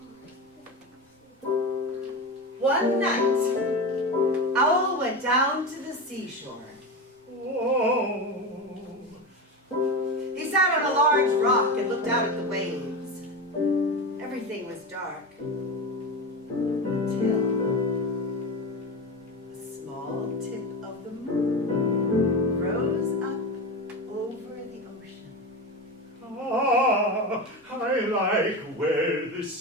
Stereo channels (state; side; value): normal; both; correlation 0.22